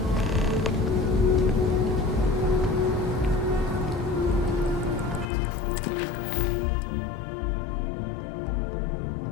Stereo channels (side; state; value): right; drops out; at 5.2 s